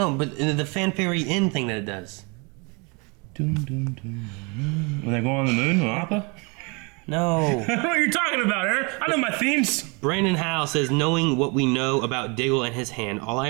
but the fanfare end thing that it does. When they go on the moon, Appa? No. I don't know what you're talking about, Aaron. I know my themes. Brandon Howe says, knowing what we know about Diggle and his hand, all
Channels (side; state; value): left; quieter; 30.8 dB